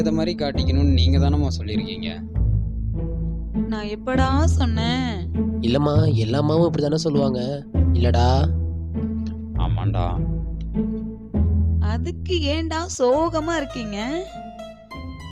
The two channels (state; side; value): identical; both; correlation 1.00